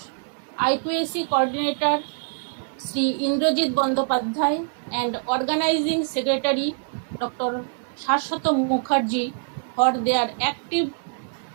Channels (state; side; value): silent; left; 62 dB below the other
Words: IQAC Coordinator, Sri Indrajit Bandopadhyay, and Organizing Secretary, Dr. Saswat Mukherjee, for their active,